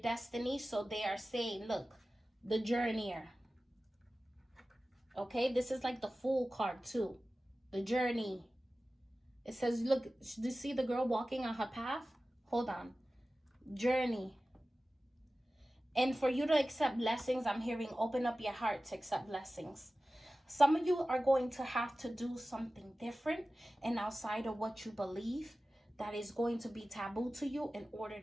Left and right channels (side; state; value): both; normal; correlation 0.96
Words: So they are saying, look, the journeyer. Okay, this is like the Fool card too. The journey. It says, look, do you see the girl walking on her path? Hold on. Journey. And for you to accept blessings, I'm hearing open up your heart to accept blessings. Some of you are going to have to do something different and outside of what you believe that is going to be taboo to you in order